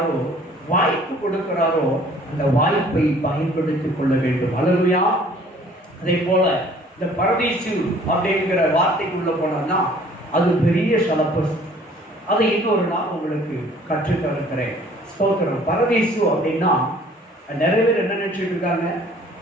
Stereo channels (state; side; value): normal; both; correlation 0.54